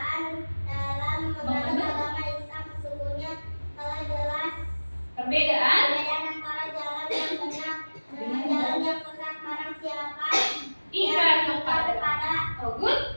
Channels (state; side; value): inverted; both; correlation -1.00